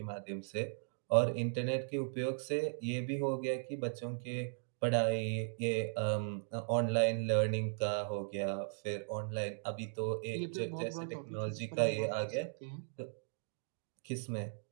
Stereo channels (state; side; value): silent; left; digital silence